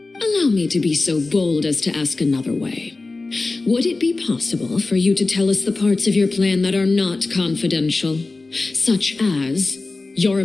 Allow me to be so bold as to ask another way. Would it be possible for you to tell us the parts of your plan that are not confidential, such as your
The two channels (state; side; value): quieter; right; 3.5 dB